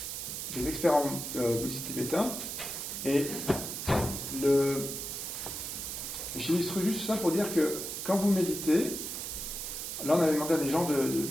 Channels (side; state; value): right; noise; hiss, 5 dB below the sound